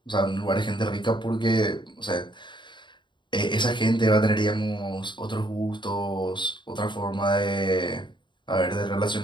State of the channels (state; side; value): late; right; 0.23 ms